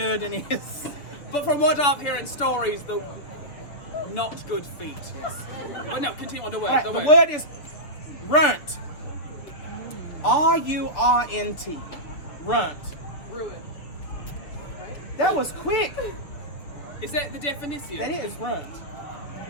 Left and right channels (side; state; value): right; late; 6.6 ms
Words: is. But from what I've heard in stories, the not good feet. Yes. But no, continue on the word. All right, the word is runt. R-U-R-N-T. Runt. Ruin. That was quick. Is that the definition? That is runt.